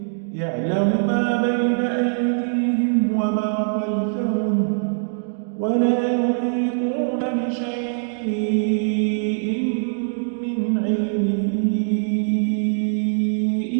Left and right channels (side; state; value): left; silent; digital silence